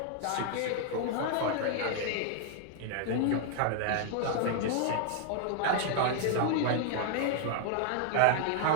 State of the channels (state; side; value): different; both; correlation 0.00